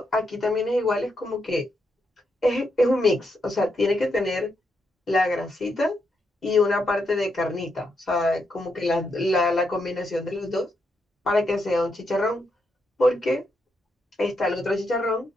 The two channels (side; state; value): both; normal; correlation 0.81